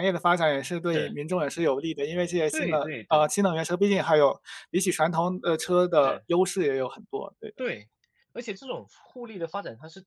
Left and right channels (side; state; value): both; identical; correlation 1.00